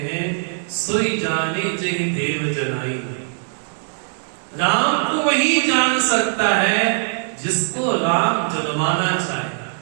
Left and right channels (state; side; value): silent; left; digital silence